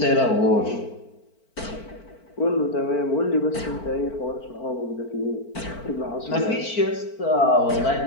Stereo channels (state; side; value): late; right; 4.5 ms